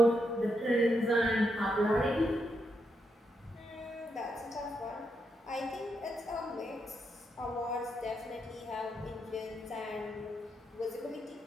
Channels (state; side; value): normal; both; correlation 0.81